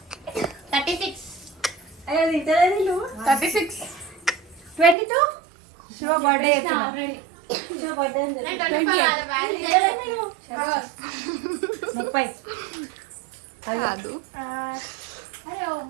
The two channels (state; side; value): drops out; left; at 5.0 s